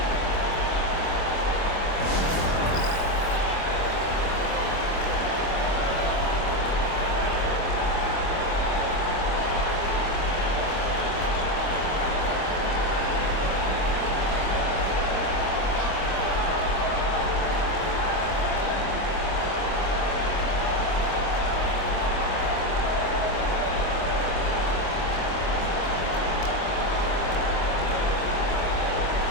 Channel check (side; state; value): right; late; 25 ms